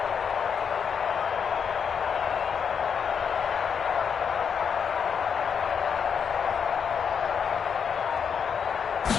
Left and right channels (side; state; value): right; quieter; 6.9 dB